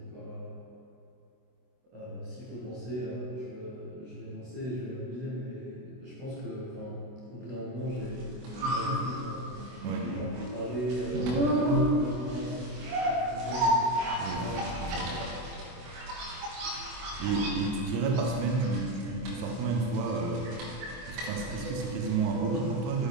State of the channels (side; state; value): left; late; 24 ms